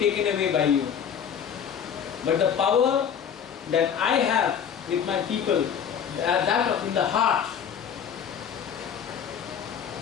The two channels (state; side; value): quieter; right; 8.1 dB